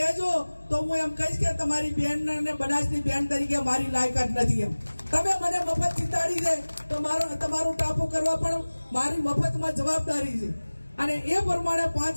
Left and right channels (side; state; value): both; inverted; correlation -1.00